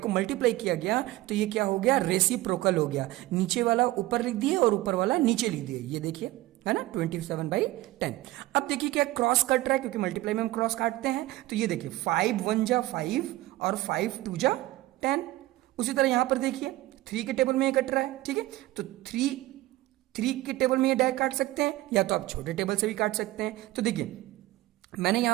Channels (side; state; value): left; quieter; 17.5 dB